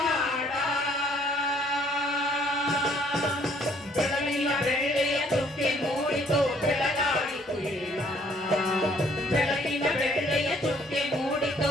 ಬೆಳಗಿನ ಬೆಳ್ಳೆಯ ಚುಕ್ಕೆ ಮೂಡಿತು ಬೆಳಗಾಯಿತು ಏಳ ಬೆಳಗಿನ ಬೆಳ್ಳೆಯ ಚುಕ್ಕೆ ಮೂಡಿತು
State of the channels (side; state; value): both; normal; correlation 0.62